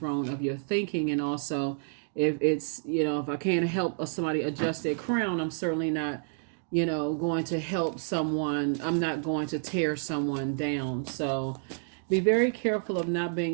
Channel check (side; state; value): left; silent; digital silence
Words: of your thinking. And also, if it's, if I can't help somebody adjust their crown, I'm certainly not, going to help someone. I'm not going to tear someone down. So be very careful of not